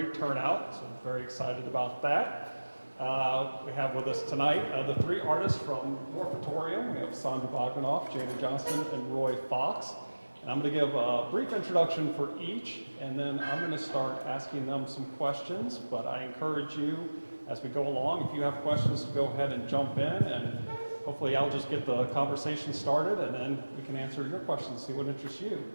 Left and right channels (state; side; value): inverted; both; correlation -1.00